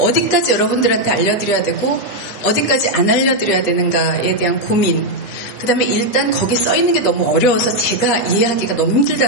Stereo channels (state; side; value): late; left; 9.5 ms